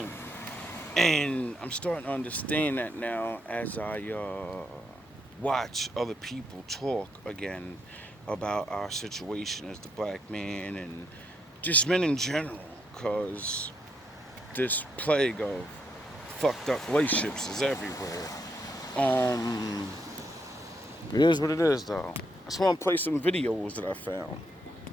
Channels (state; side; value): normal; both; correlation 0.77